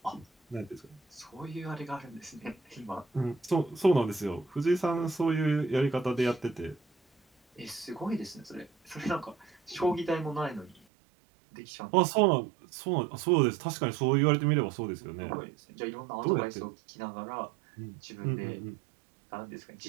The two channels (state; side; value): drops out; left; at 10.8 s